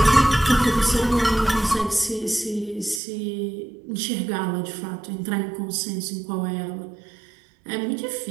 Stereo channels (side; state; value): left; drops out; at 3.0 s